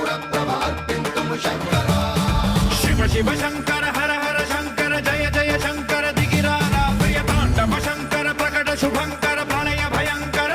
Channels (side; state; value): both; identical; correlation 1.00